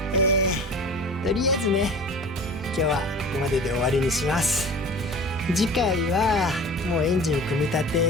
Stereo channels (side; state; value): both; normal; correlation 0.40